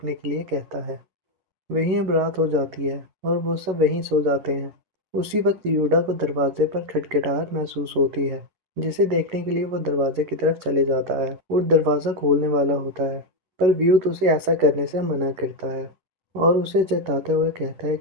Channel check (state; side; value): late; left; 11 ms